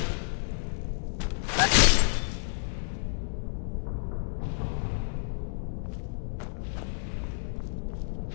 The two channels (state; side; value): silent; right; 58 dB below the other